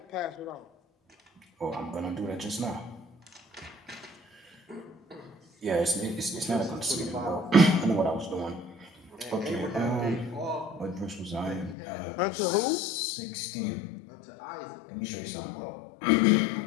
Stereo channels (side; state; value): right; drops out; at 11.8 s